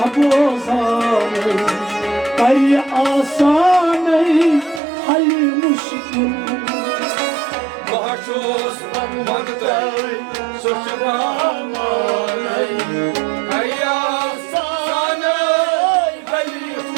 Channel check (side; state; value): left; drops out; at 4.8 s